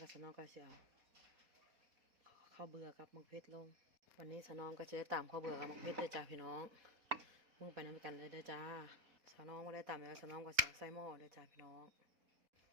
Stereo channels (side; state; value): left; late; 4.2 ms